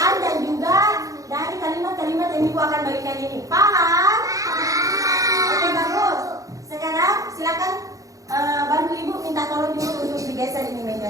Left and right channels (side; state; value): left; late; 0.16 ms